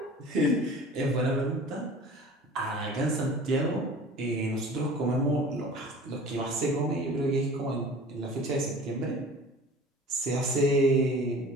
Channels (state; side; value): normal; both; correlation 0.42